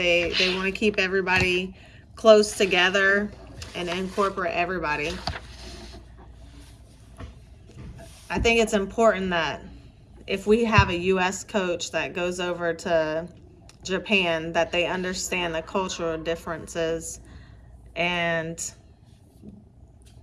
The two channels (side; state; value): both; identical; correlation 1.00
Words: want to keep everybody close together and incorporate everybody. I think it's important that if we have a U.S. coach that goes over to Japan, that they understand the cultural differences and